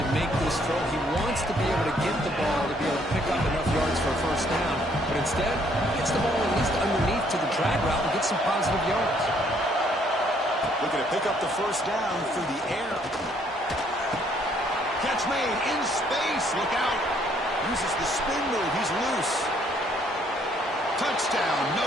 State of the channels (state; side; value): normal; both; correlation 0.66